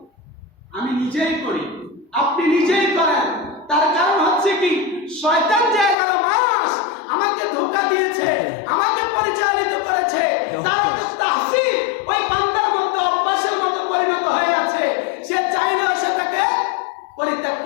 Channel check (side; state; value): right; drops out; at 6.0 s